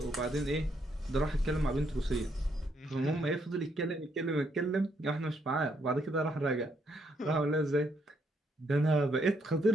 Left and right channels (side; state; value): both; normal; correlation 0.74